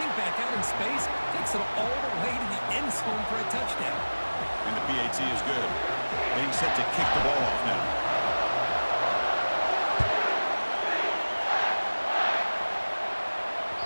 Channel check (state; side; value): inverted; both; correlation -1.00